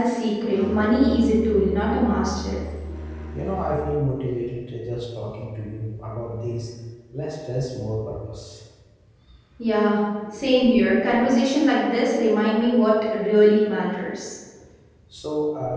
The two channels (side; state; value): both; identical; correlation 1.00